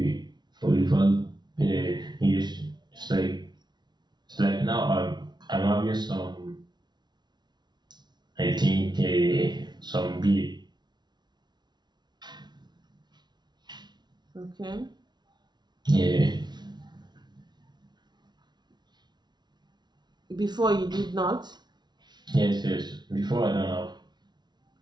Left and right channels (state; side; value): late; left; 0.20 ms